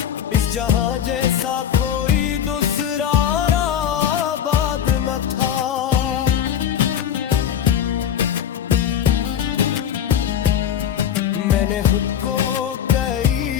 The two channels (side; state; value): right; quieter; 9.3 dB